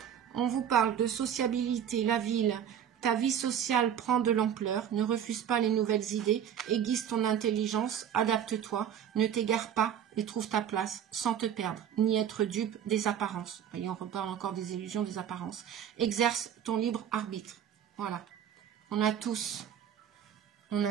On vous parle de sociabilité, la ville. Ta vie sociale prend de l'ampleur. Ne refuse pas les nouvelles idées. Aiguise ton intelligence. Adapte-toi. Ne t'égare pas et trouve ta place sans te perdre, ni être dupe des apparences. Voyez, on reparle encore des illusions, des apparences. Exerce ton libre arbitre. Voilà. On a tous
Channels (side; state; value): left; quieter; 9.2 dB